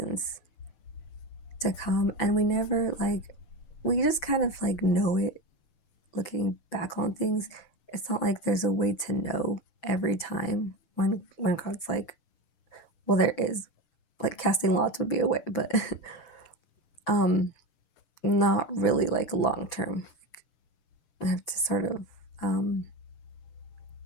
to come, and we never we just kind of know it looking back on things. It's not like there's a way to know every time when God's well, there is, casting lots would be a way, but not really long term. I have to sort of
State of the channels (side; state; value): right; late; 6.0 ms